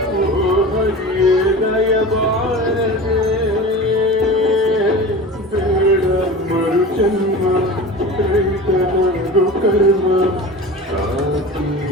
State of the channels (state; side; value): normal; both; correlation 0.33